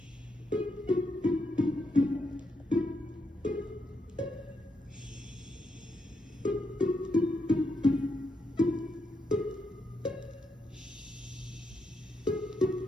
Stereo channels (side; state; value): both; normal; correlation 0.80